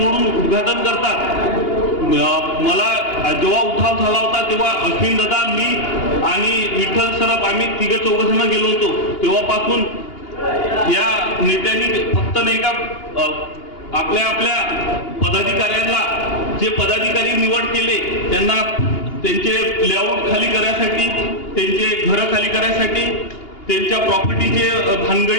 उद्घाटन करतात. मला जेव्हा उठाव झाला होता तेव्हा अश्विन दादा, मी आणि विठ्ठल सरप आम्ही तिघे चौघजण गेलो होतो. तेव्हापासून या नेत्यांनी फक्त नाही का आपल्या पदाधिकाऱ्यांना, जे पदाधिकारी निवड केले त्यांना त्यांचे लेआउट खाली करण्यासाठी, त्यांचे घरं खाली करण्यासाठी, त्यांच्या प्रॉपर्टीचे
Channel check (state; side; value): late; right; 2.8 ms